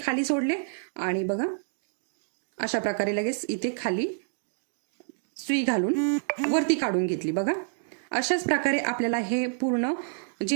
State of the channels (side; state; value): left; silent; digital silence